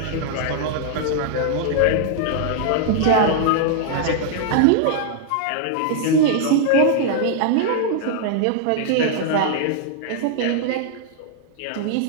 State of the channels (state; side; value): different; both; correlation -0.01